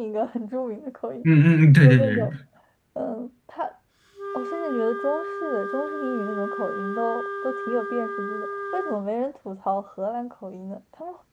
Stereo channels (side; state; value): both; identical; correlation 1.00